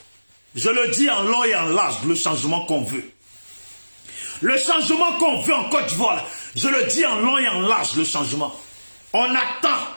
je le dis en long et en large, le changement qu'on veut. Le changement qu'on veut en Côte d'Ivoire, là, je le dis en long et en large, le changement. On attend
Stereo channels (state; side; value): inverted; both; correlation -1.00